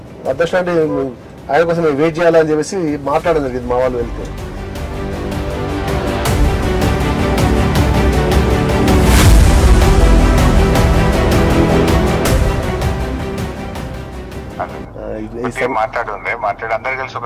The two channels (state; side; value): identical; both; correlation 1.00